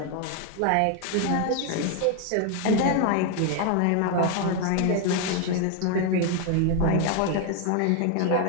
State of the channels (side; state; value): both; different; correlation 0.01